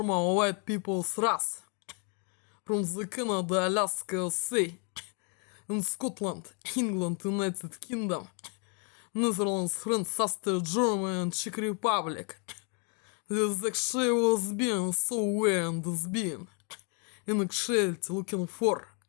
white people's race from the Canada, Alaska, Sea, in Scotland, England, United Kingdom, Netherlands, France, Austria, Germany, and Czech Republic. This actually was being so way and is being in actuality looking for.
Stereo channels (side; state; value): right; quieter; 38.2 dB